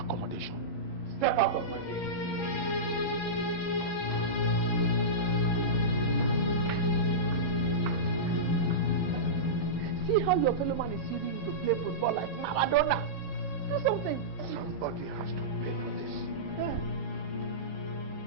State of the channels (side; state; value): right; late; 11 ms